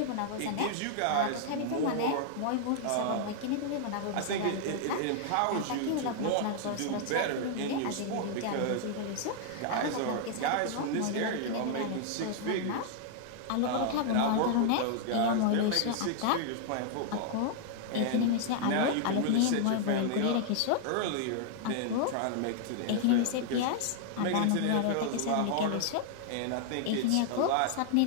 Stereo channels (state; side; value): different; both; correlation -0.01